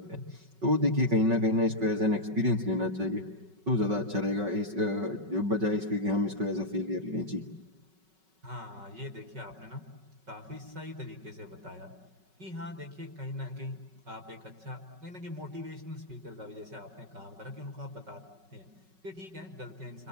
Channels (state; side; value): late; left; 5.3 ms